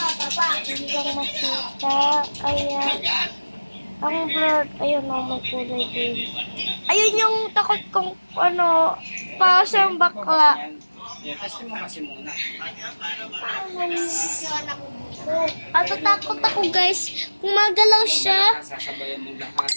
lang makita. Ayan. Ang blurred. Ayun na, may kulay green. Ayun yung takot kong, para siyang bakla. Testing mo kasi muna. Takot ako guys. Gumagalaw siya. Sasabayan mong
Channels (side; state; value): both; inverted; correlation -1.00